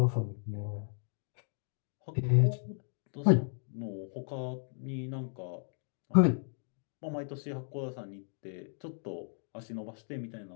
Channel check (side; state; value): right; silent; digital silence